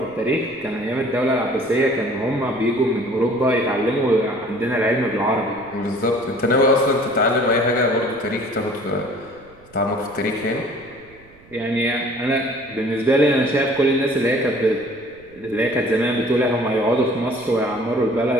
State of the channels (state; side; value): noise; right; rumble, 26 dB below the sound